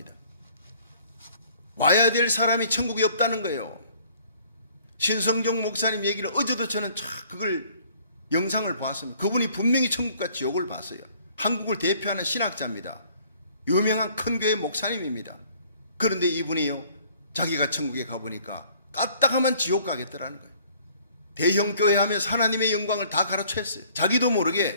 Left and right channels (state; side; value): inverted; both; correlation -0.58